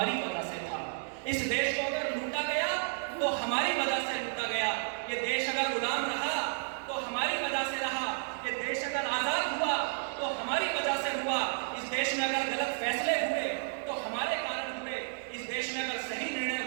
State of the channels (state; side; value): silent; left; 56 dB below the other